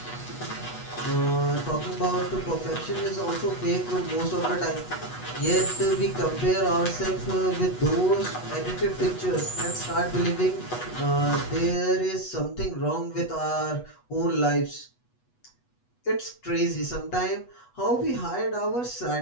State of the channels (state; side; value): late; right; 8.2 ms